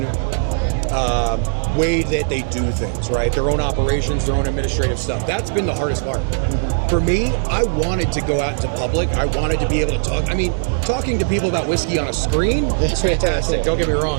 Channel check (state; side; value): silent; left; digital silence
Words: way that they do things, right? Their own operations, their own administrative stuff. That's been the hardest part. For me, I wanted to go out into public. I wanted to be able to talk. I mean, talking to people about whiskey on a screen is fantastic. Don't get me